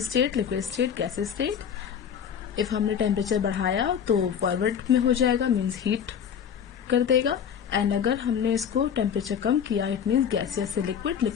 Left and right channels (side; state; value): right; quieter; 8.0 dB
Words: liquid state, gas state. If हमने टेम्परेचर बढ़ाया तो फॉरवर्ड में हो जाएगा, मीन्स हीट कर देगा. एंड अगर हमने इसको टेम्परेचर कम किया, इट मीन्स गैसियस से लिक्विड,